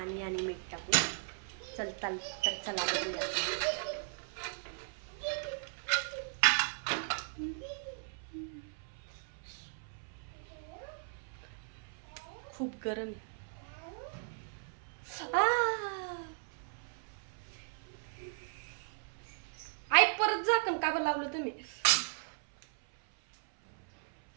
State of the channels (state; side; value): silent; left; 53 dB below the other